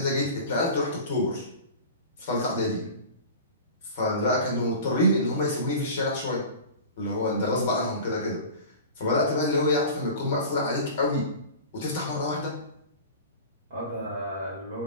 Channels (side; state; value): both; inverted; correlation -0.35